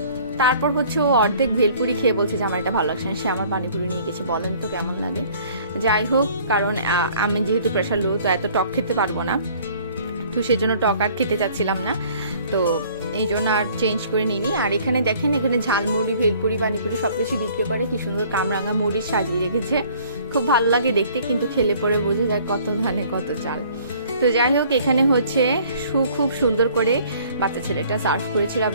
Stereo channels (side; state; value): both; inverted; correlation -0.55